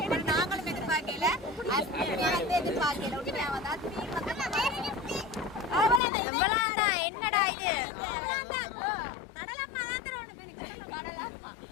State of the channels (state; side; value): drops out; right; at 6.0 s